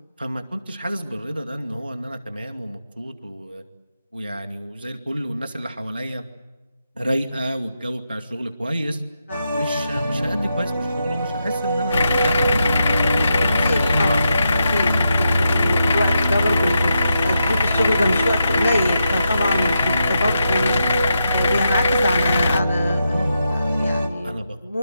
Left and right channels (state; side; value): inverted; both; correlation -0.85